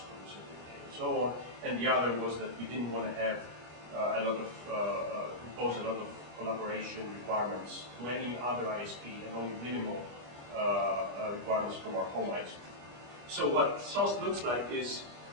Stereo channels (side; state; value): left; late; 25 ms